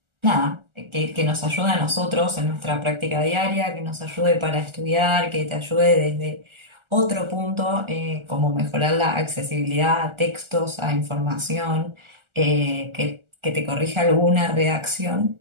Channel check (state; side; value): late; left; 1.4 ms